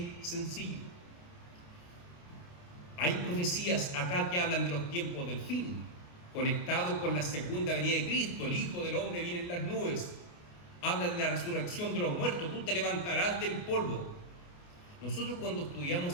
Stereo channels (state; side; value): late; right; 28 ms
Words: sencillo. Hay profecías acá que hablan de los tiempos del fin, conectados con la segunda venida de Cristo. El Hijo del Hombre viene en las nubes. habla de la resurrección de los muertos, tú te levantarás del polvo. Nosotros cuando